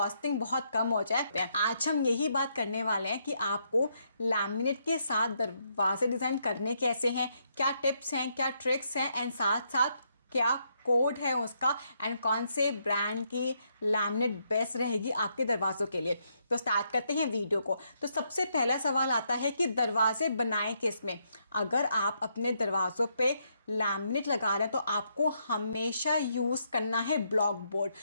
बहुत कम हो जाए। आज हम यही बात करने वाले हैं कि आपको लैमिनेट के साथ दरवाजे डिज़ाइन करने कैसे हैं, क्या टिप्स हैं, क्या ट्रिक्स हैं, एंड साथ साथ क्या कोड है उसका, एंड कौन से ब्रांड की लैमिनेट बेस्ट रहेगी आपके दरवाज़ों के लिए। तो स्टार्ट करते हैं वीडियो को। तो सबसे पहला सवाल आता है कि दरवाजे बनाएं किस में। अगर आप अपने दरवाज़ों पे लैमिनेट लगा रहे हैं तो आपको हमेशा यूज़ करना है ब्लॉक बोर्ड,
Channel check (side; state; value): both; inverted; correlation -0.76